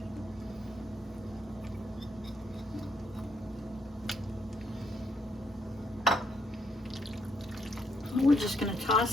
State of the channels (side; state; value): both; normal; correlation 0.73